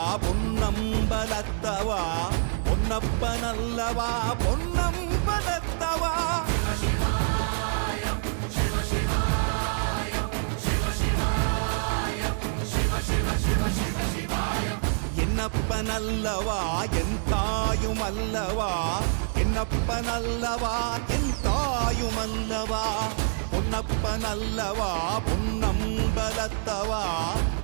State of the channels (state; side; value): silent; left; 60 dB below the other